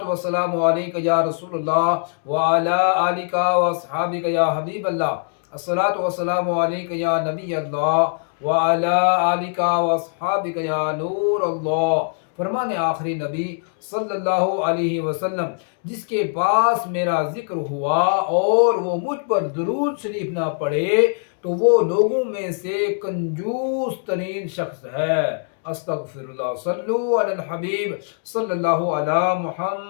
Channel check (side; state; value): right; silent; digital silence